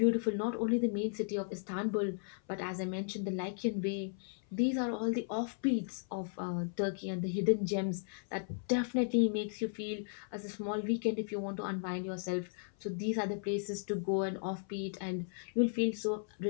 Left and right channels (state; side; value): silent; right; 54 dB below the other